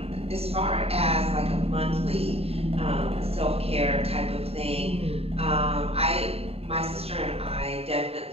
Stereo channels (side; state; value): left; late; 0.29 ms